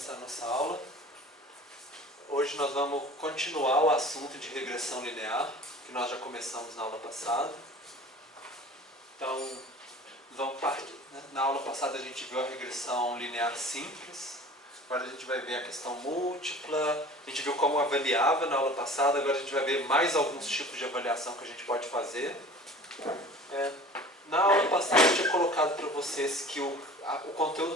a nossa aula. Hoje nós vamos continuar o assunto de regressão linear, que nós já começamos na aula passada. Então, na aula passada a gente viu a regressão linear simples, agora a gente vai ver a questão múltipla, a gente viu como avaliava na aula passada, agora a gente vai ver mais alguns tipos de avaliação que a gente pode fazer. Na aula passada eu tinha colocado para vocês que o conteúdo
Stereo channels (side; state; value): both; normal; correlation 0.43